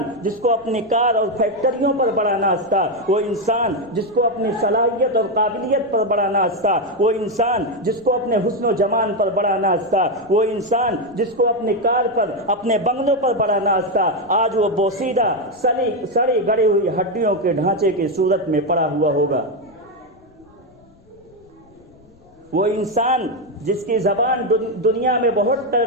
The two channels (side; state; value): left; noise; rumble, 29 dB below the sound